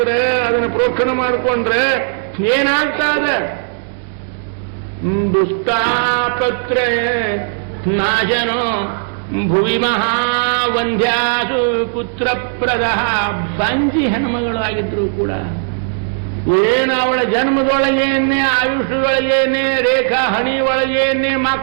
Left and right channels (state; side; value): silent; left; digital silence